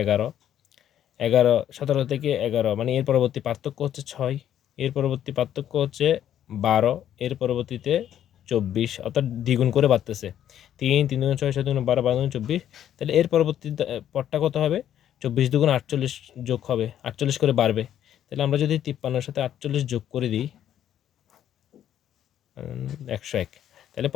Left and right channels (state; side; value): quieter; right; 10.7 dB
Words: 11, 11, 17 থেকে 11 মানে এর পরবর্তী পার্থক্য হচ্ছে 6, এর পরবর্তী পার্থক্য হচ্ছে 12, এর পরবর্তীতে 24, অর্থাৎ দ্বিগুণ করে বাড়তেছে, 3, 3 দুগুণ 6, 7 দুগুণ 12, 12 দুগুণ 24। তাহলে এর পরবর্তী পদটা কত হবে? 24 দুগুণ 48 যোগ হবে, 48 করে বাড়বে। তাহলে আমরা যদি 53-এর সাথে 48 যোগ করে দিই 101, তাহলে